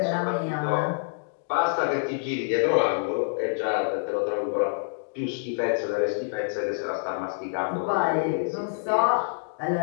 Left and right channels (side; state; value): right; silent; digital silence